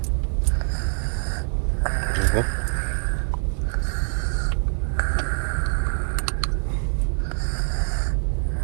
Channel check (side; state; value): left; silent; 58 dB below the other